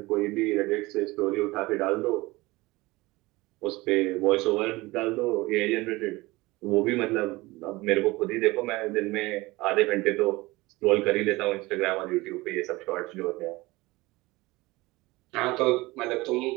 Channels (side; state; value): left; quieter; 21.1 dB